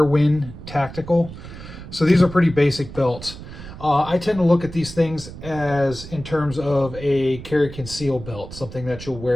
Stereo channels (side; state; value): right; noise; rumble, 13 dB below the sound